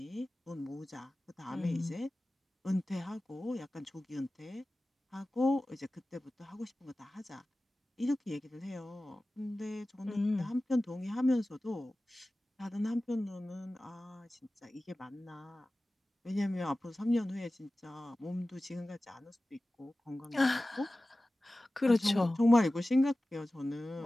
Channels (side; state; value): both; normal; correlation 0.96